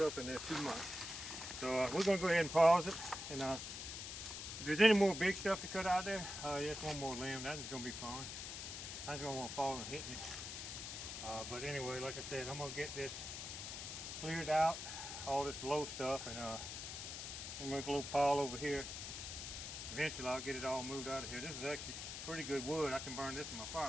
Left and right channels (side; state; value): left; noise; hiss, 7 dB below the sound